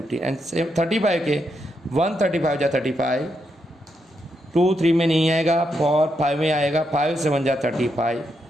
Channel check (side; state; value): both; normal; correlation 0.81